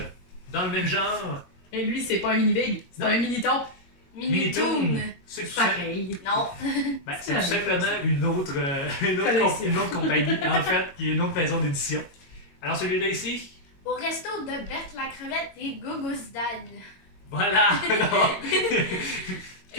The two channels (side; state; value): right; late; 22 ms